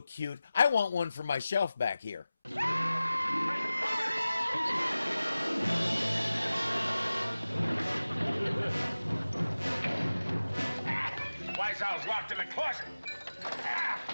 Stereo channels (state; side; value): inverted; both; correlation -0.96